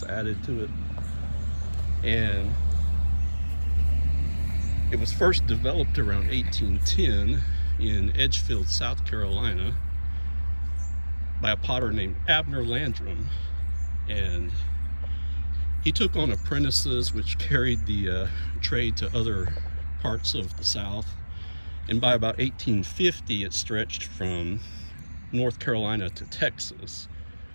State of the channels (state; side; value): inverted; both; correlation -1.00